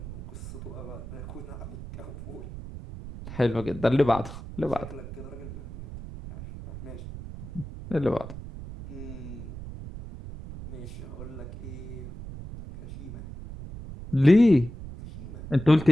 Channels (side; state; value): right; noise; rumble, 11 dB below the sound